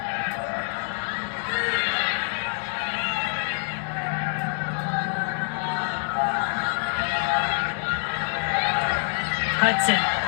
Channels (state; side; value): silent; right; 55 dB below the other